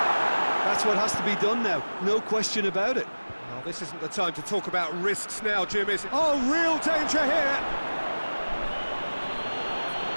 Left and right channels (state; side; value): inverted; both; correlation -1.00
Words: That's what has to be done now, no question about it. Well, this isn't the time to talk about risks now, Jim, is it? Oh, real danger here!